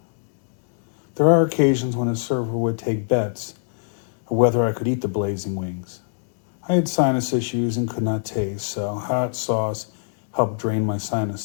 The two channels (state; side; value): silent; right; digital silence